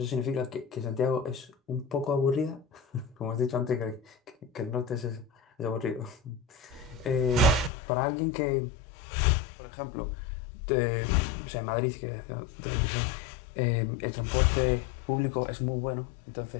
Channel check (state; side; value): drops out; right; at 7.7 s